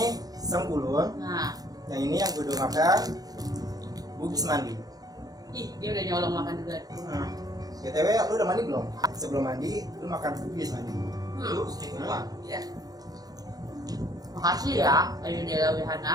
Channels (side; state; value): left; late; 0.18 ms